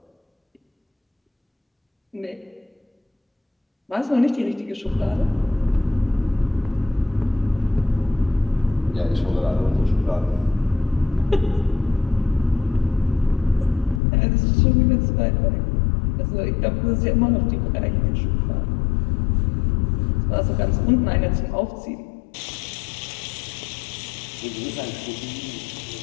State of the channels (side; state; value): right; drops out; at 14.0 s